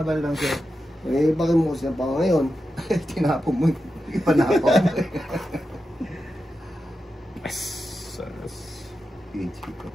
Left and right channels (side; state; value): both; normal; correlation 0.90